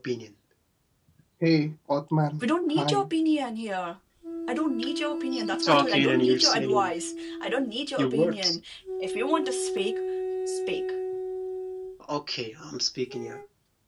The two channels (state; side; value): identical; both; correlation 1.00